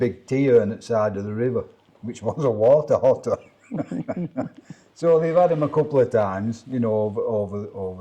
tea urn at the side of the river, which was a water otter. So they've had them a couple of times, you know,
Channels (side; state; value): both; identical; correlation 1.00